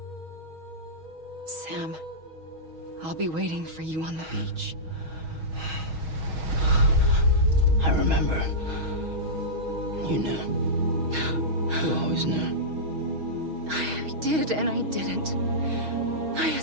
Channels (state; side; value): late; left; 6.3 ms